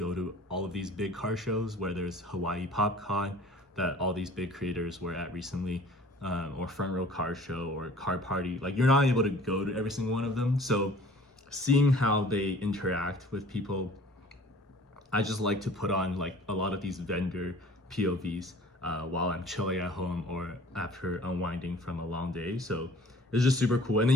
to all of these big car shows, where there's Hawaii PopCon that all these big creators were at recently, or Front Row Car Show or Car Party. Like you're not able to go to every single one of them. So seeing how they interact with people, I just like to put on like a lot of these vendor POVs while I'm chilling at home or after unwinding from a long day. So it's just super cool. And then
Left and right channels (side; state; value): both; normal; correlation 0.49